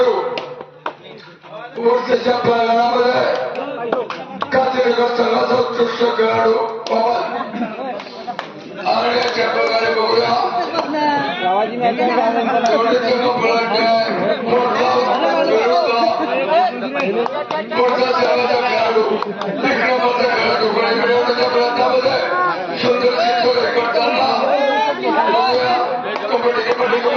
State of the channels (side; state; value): both; identical; correlation 1.00